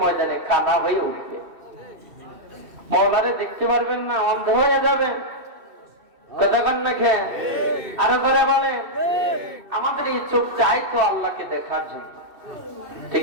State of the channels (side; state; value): left; late; 2.7 ms